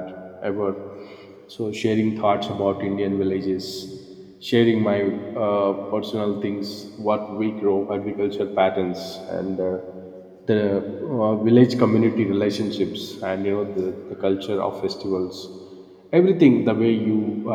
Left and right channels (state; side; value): identical; both; correlation 1.00